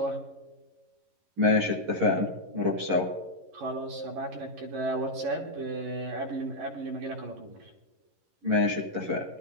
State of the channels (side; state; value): left; late; 11 ms